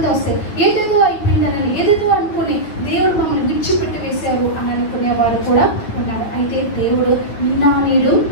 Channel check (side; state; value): right; late; 9.5 ms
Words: వస్తే ఏదేదో అయిపోయిందని ఏదేదో అనుకుని దేవుడు మమ్మల్ని విడిచిపెట్టి వేశారు అని అనుకునే వాళ్ళు కూడా ఉన్నారు. అయితే దేవుడు నిన్న నేడు